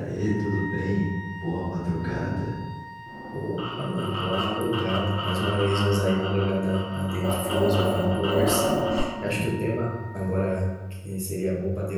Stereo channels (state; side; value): identical; both; correlation 1.00